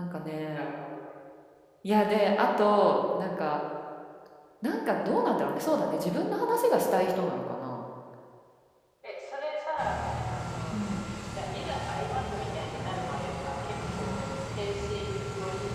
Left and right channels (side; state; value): both; identical; correlation 1.00